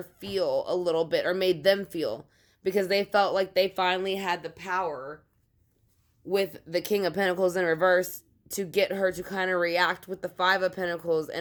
feel a little bit, or made them feel, because they felt like they finally had the power with the King of Pentacles in reverse to get her to kind of react with the Five of Pentacles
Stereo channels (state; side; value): identical; both; correlation 1.00